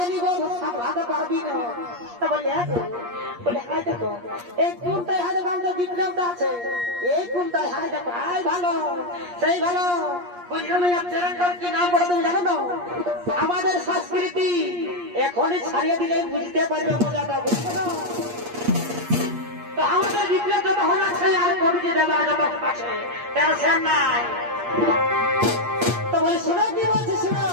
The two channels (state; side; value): late; left; 8.5 ms